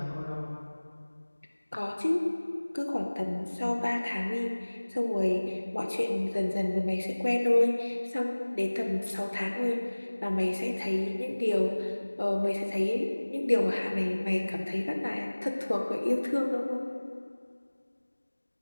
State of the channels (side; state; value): both; inverted; correlation -1.00